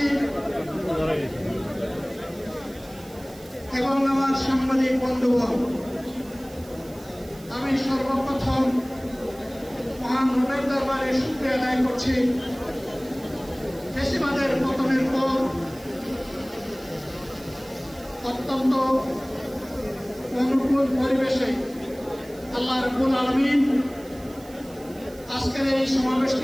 এবং আমার সাংবাদিক বন্ধুগণ, আমি সর্বপ্রথম মহান রবের দরবারে শুকরিয়া আদায় করছি। ফ্যাসিবাদের পতনের পর অত্যন্ত অনুকূল পরিবেশে আল্লাহ রাব্বুল আলামিন আজকের এই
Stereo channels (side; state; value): right; noise; hiss, 23 dB below the sound